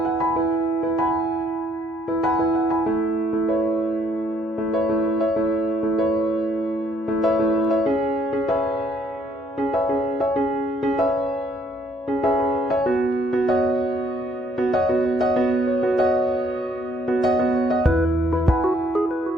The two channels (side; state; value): both; normal; correlation 0.67